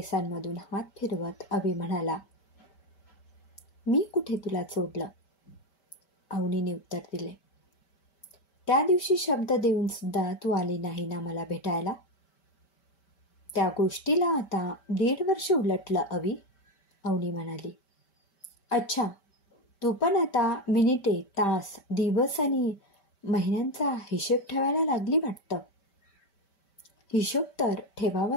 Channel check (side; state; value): right; late; 5.1 ms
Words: हात फिरवत अवी म्हणाला. मी कुठे तुला सोडलं? अवनीने उत्तर दिले. त्या दिवशी शब्द देऊन सुद्धा तू आली नाही ना मला भेटायला. त्या गोष्टीला आता 1.5 वर्ष उलटलं अवी, अवनी म्हणाली. अच्छा, तू पण आता मिनिटे, तास, दिवस आणि महिन्यांचा हिशेब ठेवायला लागली वाटतं. हिशोब तर